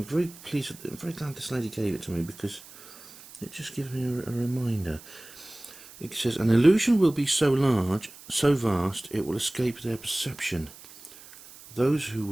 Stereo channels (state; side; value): noise; right; hiss, 19 dB below the sound